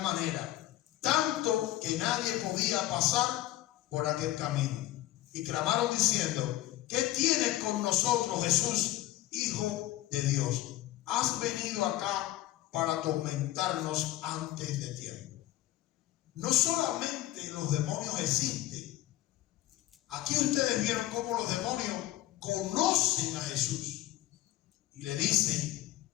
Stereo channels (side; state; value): right; quieter; 15.3 dB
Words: manera, tanto que nadie podía pasar por aquel camino. Y clamaron diciendo: ¿qué tienes con nosotros, Jesús, Hijo de Dios? ¿Has venido acá para atormentarnos antes de tiempo? No solamente los demonios existen. Aquí ustedes vieron cómo los demonios conocen a Jesús y le dicen: